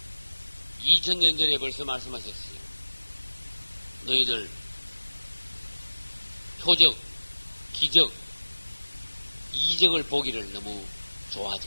2000년 전에 벌써 말씀하셨어요. 너희들 표적, 기적, 이적을 보기를 너무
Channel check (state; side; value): inverted; both; correlation -1.00